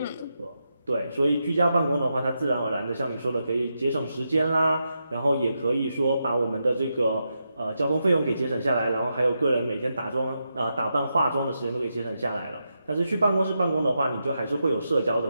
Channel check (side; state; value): both; inverted; correlation -0.86